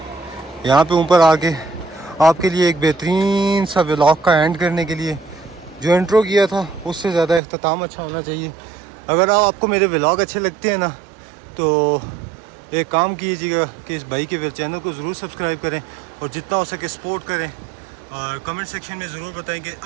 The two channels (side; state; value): left; drops out; at 7.4 s